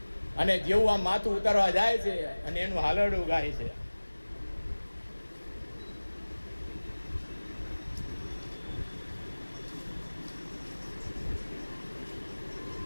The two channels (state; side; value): inverted; both; correlation -1.00